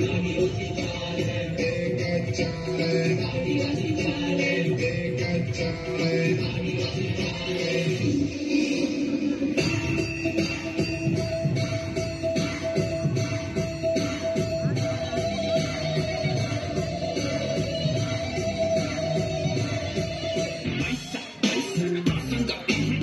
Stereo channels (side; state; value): both; identical; correlation 1.00